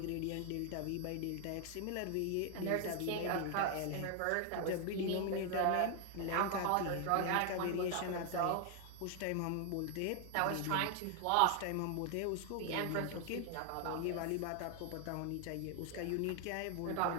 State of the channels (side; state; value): both; different; correlation 0.00